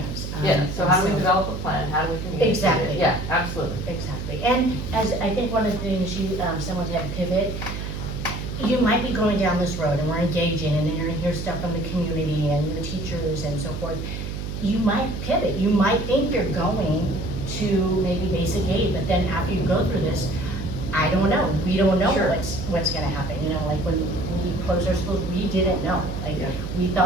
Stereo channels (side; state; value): right; noise; hum, 6 dB below the sound